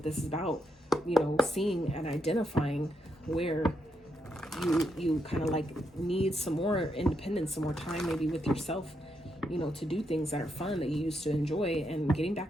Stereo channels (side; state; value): both; normal; correlation 0.80